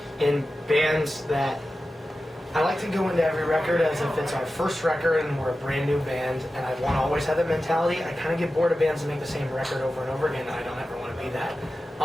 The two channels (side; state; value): both; normal; correlation 0.94